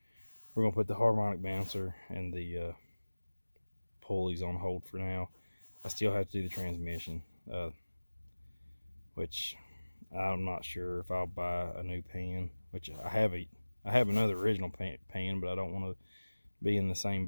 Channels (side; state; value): both; inverted; correlation -1.00